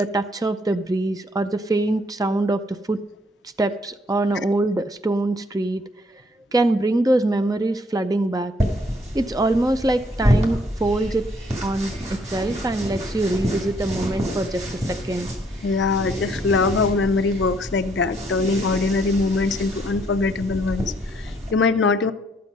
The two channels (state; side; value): normal; both; correlation 0.67